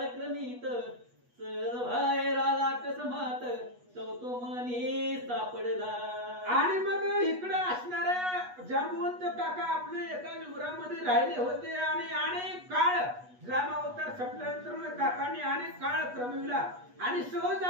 बाहेर आला कसमात तो मनी सापडला. आणि मग इकडे असणाऱ्या जांबवंत काका आपले एका विवरामध्ये राहिले होते आणि अनेक काळ राम अवतार संपल्यानंतर काकांनी अनेक काळ क्रमविला आणि सहज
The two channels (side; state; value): left; late; 8.2 ms